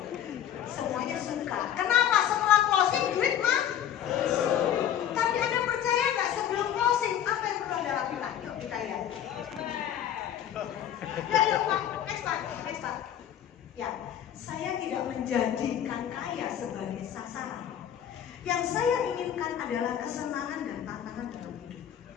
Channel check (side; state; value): right; quieter; 10.2 dB